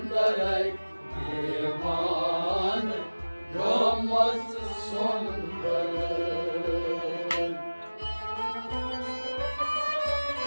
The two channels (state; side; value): inverted; both; correlation -1.00